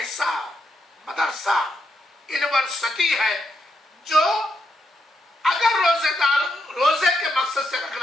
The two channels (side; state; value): both; normal; correlation 0.81